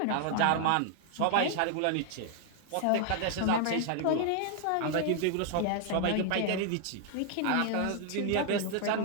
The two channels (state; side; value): different; both; correlation 0.00